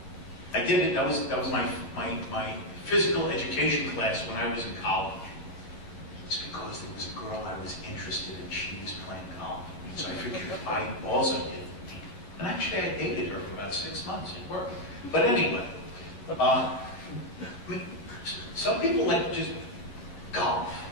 I did it. That was my physical education class when I was in college. It's because there was a girl I was interested in. She was playing golf. So I figured I also did. And actually I dated her for about 6 months. It worked. But anyway, I mean, some people like to just golf.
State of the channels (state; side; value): late; right; 10 ms